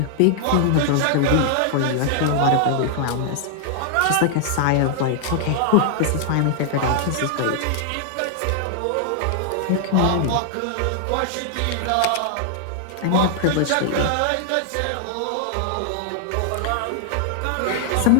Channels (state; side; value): different; both; correlation 0.00